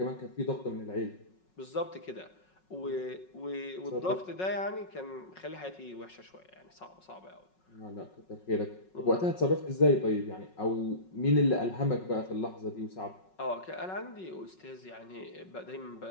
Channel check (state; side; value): late; right; 5.4 ms